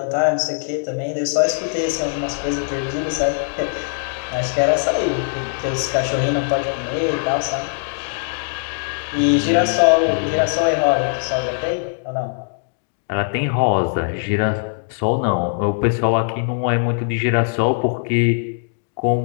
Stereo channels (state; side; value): silent; right; digital silence